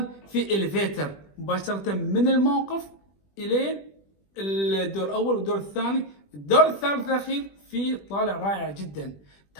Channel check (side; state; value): right; late; 20 ms